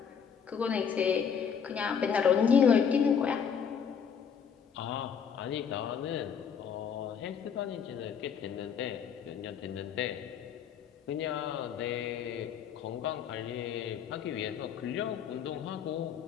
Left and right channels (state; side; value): quieter; right; 7.3 dB